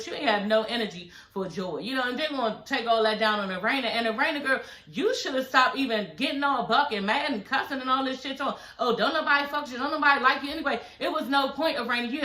you ain't had no energy for Joy. You know, and they're going to take all that down on the Raina. And the Raina girl, you should have stopped even getting all buck and mad and cussing and all this shit on. Oh, don't nobody fuck you. Don't nobody like you anyway. It was no point of Raina. You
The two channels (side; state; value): both; identical; correlation 1.00